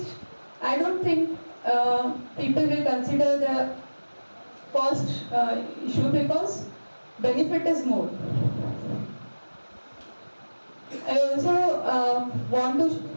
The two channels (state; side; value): inverted; both; correlation -1.00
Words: I don't think people will consider the cost issue because benefit is more. I also want to